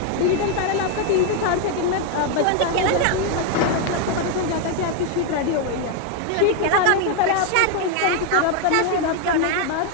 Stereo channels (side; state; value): both; different; correlation 0.01